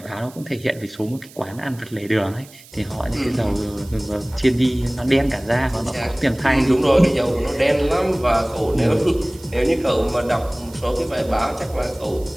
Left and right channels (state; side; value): noise; right; hiss, 22 dB below the sound